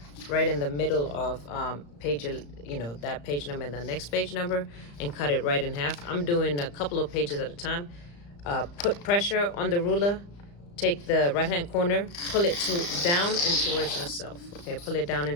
right in the middle of page, that page number and the next page number, and cut it right in half. I'm doing a couple of pages at a time. Put pressure on the ruler. Take the right-hand corner, pull it down and towards yourself. Okay, pull it down and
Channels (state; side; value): late; right; 35 ms